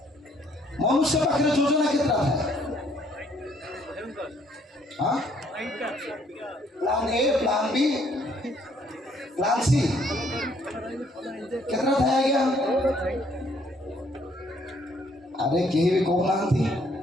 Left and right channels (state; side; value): normal; both; correlation 0.66